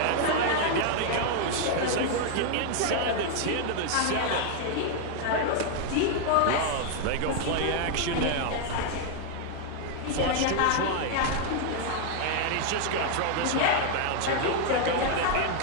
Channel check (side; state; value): both; different; correlation 0.00